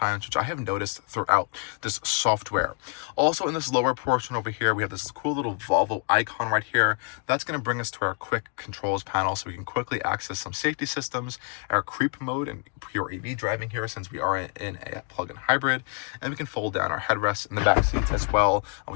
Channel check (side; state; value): right; quieter; 38.0 dB